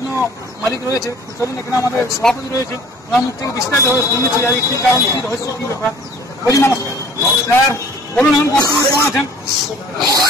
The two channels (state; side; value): normal; both; correlation 0.51